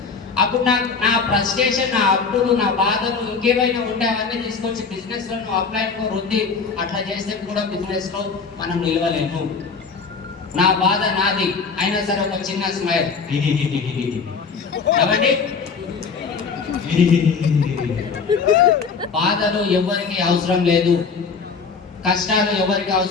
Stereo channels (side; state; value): right; quieter; 5.2 dB